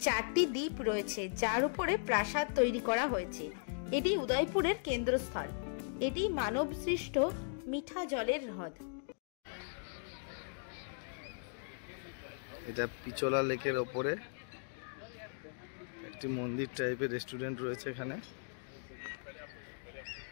4টি দ্বীপ রয়েছে, যার উপরে প্রাসাদ তৈরি করা হয়েছে। এটি উদয়পুরের কেন্দ্রস্থল। এটি মানবসৃষ্ট মিঠা জলের হ্রদ। এটা পিচোলা লেকের ওপরে একটি মন্দির টাইপের রেস্টুরেন্ট রয়েছে। এখানে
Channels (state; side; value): silent; right; digital silence